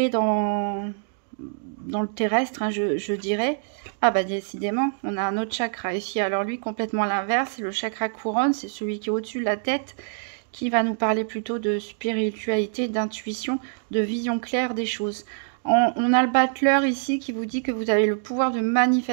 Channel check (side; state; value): left; silent; digital silence